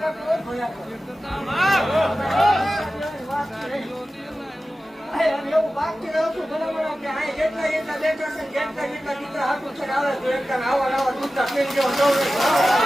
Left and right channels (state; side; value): normal; both; correlation 0.95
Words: એવું બાકી રહું છું બરાબર કે આ જેટલા જેટલા બેઠા છે જેટલા જેટલા દીકરા હાથું છે આવે તો એકદમ આવા નવા દૂધના પેન જેવો દોડે